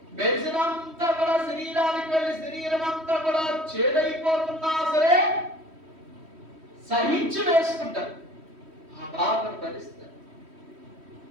మెడిసిన్ అంతా కూడా శరీరానికి వెళ్ళి శరీరం అంతా కూడా చేదైపోతున్నా సరే సహించి వేసుకుంటారు, ఆ బాధను భరిస్తారు.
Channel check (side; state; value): left; late; 3.1 ms